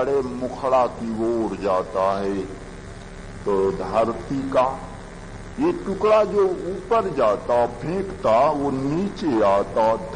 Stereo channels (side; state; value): both; identical; correlation 1.00